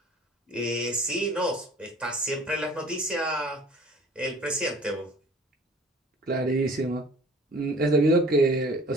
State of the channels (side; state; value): both; normal; correlation 0.49